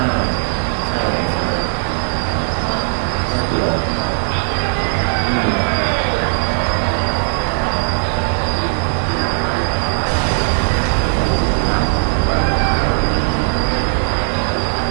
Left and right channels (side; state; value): left; silent; 68 dB below the other